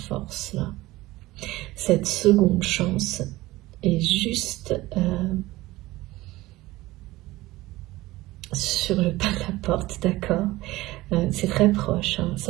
là. Cette seconde chance est juste sur le pas de la porte, d'accord. C'est très proche, hein.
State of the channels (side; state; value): left; quieter; 18.5 dB